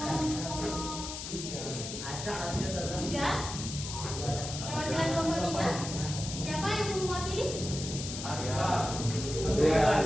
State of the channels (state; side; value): noise; left; hiss, 7 dB below the sound